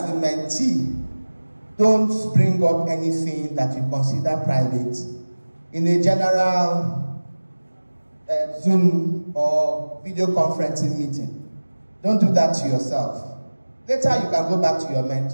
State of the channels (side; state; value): both; inverted; correlation -1.00